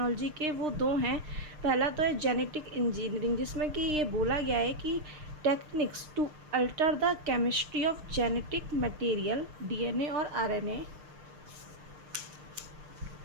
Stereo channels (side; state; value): left; late; 6.6 ms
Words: के वो दो हैं। पहला तो है जेनेटिक इंजीनियरिंग, जिसमें कि ये बोला गया है कि techniques to alter the chemistry of genetic material DNA और आरएनए।